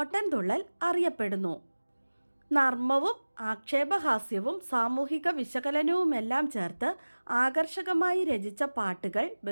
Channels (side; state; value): both; inverted; correlation -1.00